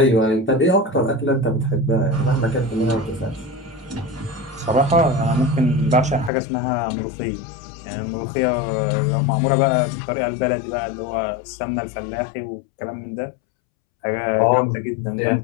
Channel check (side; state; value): right; drops out; at 6.3 s